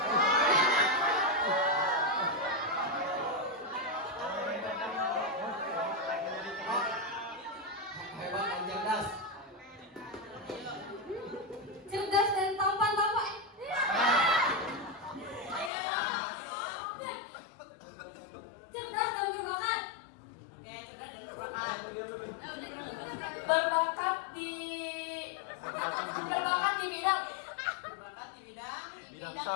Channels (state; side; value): drops out; right; at 15.7 s